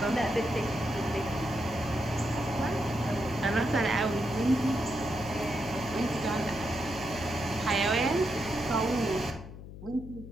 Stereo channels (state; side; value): noise; left; hum, 13 dB below the sound